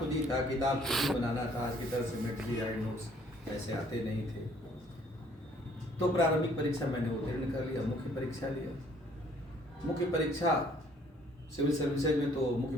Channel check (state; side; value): normal; both; correlation 0.60